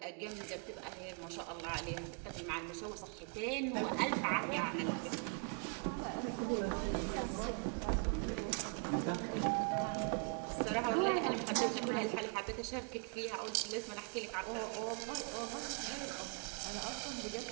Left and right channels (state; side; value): quieter; left; 39.3 dB